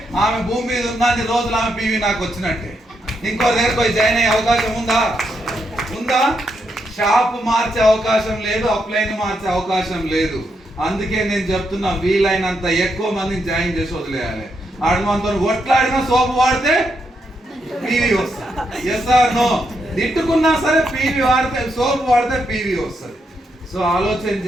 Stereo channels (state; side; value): normal; both; correlation 0.81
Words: ఆమె భూమి మీద ఉన్నన్ని రోజులు ఆమె పీవీ నాకు వచ్చినట్టే. ఇంకో దగ్గర పోయి జాయిన్ అయ్యే అవకాశం ఉందా? ఉందా? షాప్ మార్చే అవకాశం లేదు, అప్లైన్ మార్చే అవకాశం లేదు. అందుకే నేను చెప్తున్నా, వీలైనంత ఎక్కువ మందిని జాయిన్ చేసి వదిలేయాలి. ఆడు మనతో కొట్లాడినా సోపు వాడితే పీవీ వస్తుంది. Yes or no? తిట్టుకున్నా సరే పీవీ వాడితే, సోపు వాడితే పీవీ వస్తుంది. సో ఆలోచన